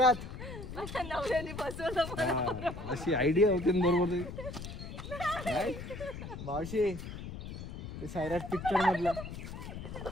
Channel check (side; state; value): left; noise; rumble, 9 dB below the sound